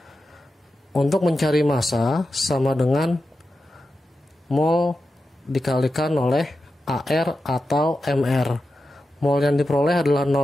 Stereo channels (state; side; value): normal; both; correlation 0.91